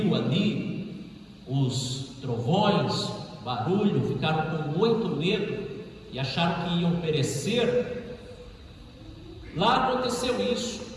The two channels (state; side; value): identical; both; correlation 1.00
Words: ali os trovões, barulho, ficaram com muito medo e acharam que iam perecer. Lá aconteceu isso,